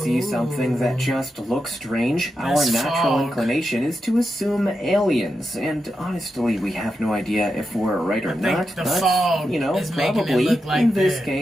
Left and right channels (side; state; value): both; normal; correlation 0.88